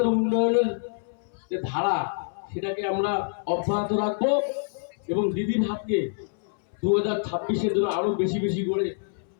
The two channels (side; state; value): right; silent; 61 dB below the other